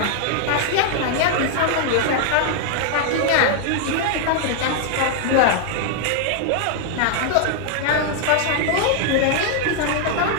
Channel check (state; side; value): different; both; correlation 0.00